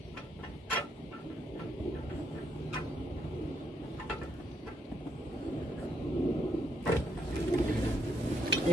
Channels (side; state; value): both; normal; correlation 0.74